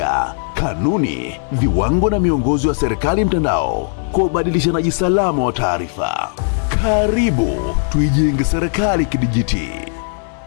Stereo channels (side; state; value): right; silent; 59 dB below the other